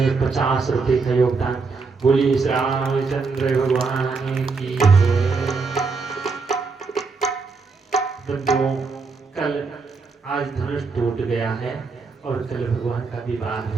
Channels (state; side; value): quieter; left; 4.5 dB